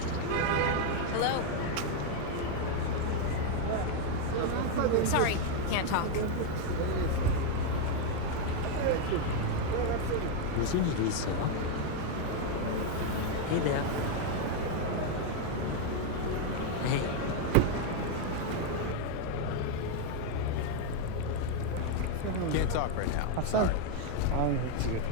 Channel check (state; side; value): different; both; correlation 0.01